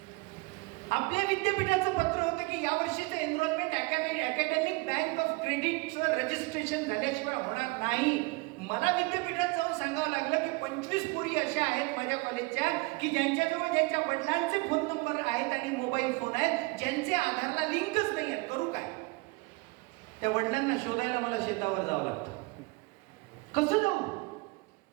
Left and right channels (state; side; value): quieter; left; 25.3 dB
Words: आपल्या विद्यापीठाचं पत्र होतं की यावर्षीचं एनरोलमेंट अकॅडमिक बँक ऑफ क्रेडिटचं रजिस्ट्रेशन झाल्याशिवाय होणार नाही. मला विद्यापीठात जाऊन सांगावं लागलं की 25 पोरी अशा आहेत माझ्या कॉलेजच्या की ज्यांच्याजवळ ज्यांच्या वडिलांचे फोन नंबर आहेत आणि मोबाईल फोन आहेत, ज्यांचे आधारला लिंकच नाही आहेत. करू काय? त्या वडिलांना शोधायला मला शेतावर जावं लागतं. कसं जाऊ?